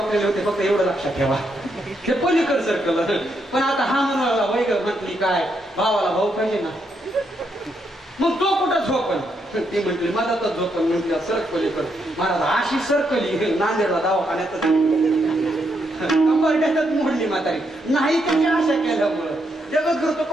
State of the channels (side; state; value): both; normal; correlation 0.78